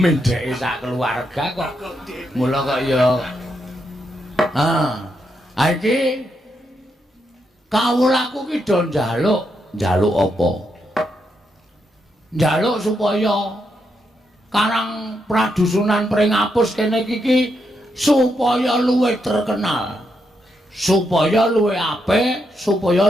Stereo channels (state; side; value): normal; both; correlation 0.81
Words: sak keluarga kok mula kok ya iki kawulaku ki do njaluk apa? Njaluk supaya Karang Pradusunan Pringapus kene iki supaya luwih terkenal, supaya luwih apik, supaya